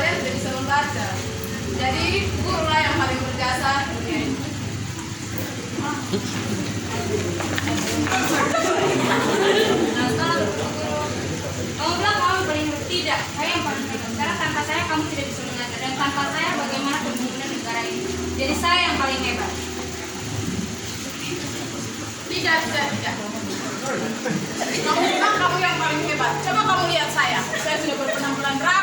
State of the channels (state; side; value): identical; both; correlation 1.00